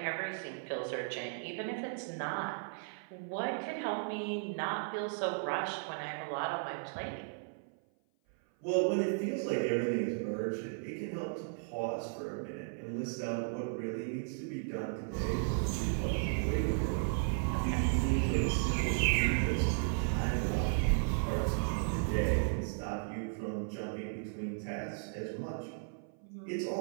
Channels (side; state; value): left; silent; 54 dB below the other